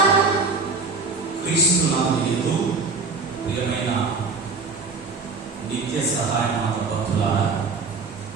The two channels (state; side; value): quieter; left; 4.3 dB